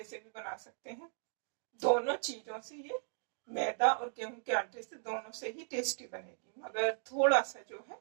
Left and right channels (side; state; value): left; silent; digital silence